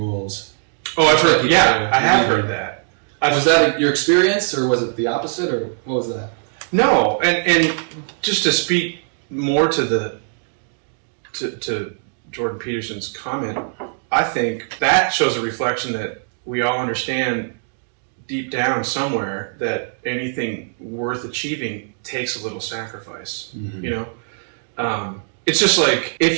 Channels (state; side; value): silent; left; digital silence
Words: Oh, I've heard. Yeah, I have heard that. Was that your experience, or was it the opposite, or what was that? No, and just to speak more to Jordan Peterson's comment, I think that shows a reflection that we all understand deep down somewhere that anything worth achieving takes a little sacrifice. It's just like,